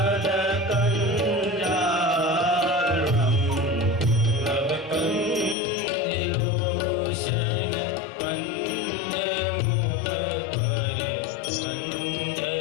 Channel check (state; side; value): drops out; right; at 5.6 s